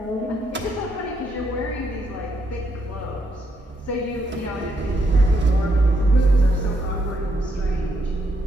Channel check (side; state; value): both; normal; correlation 0.76